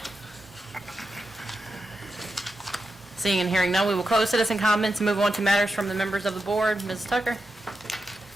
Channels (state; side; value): normal; both; correlation 0.88